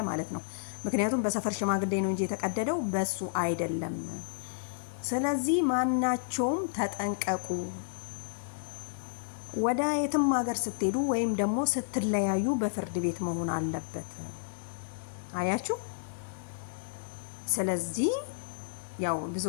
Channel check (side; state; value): right; silent; digital silence